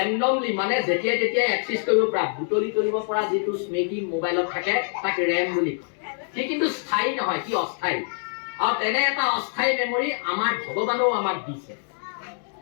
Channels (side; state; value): right; silent; 62 dB below the other